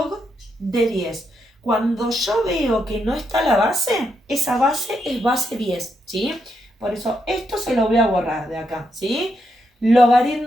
de 10. Cuando yo veo que no está la base, esa base es base 10, ¿sí? Por eso esto se lo voy a borrar de acá, ¿sí?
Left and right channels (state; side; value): normal; both; correlation 0.81